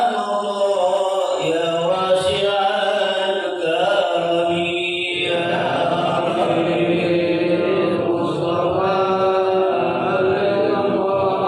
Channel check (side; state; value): both; identical; correlation 1.00